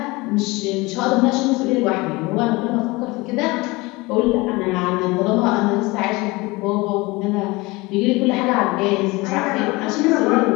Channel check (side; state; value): right; quieter; 23.2 dB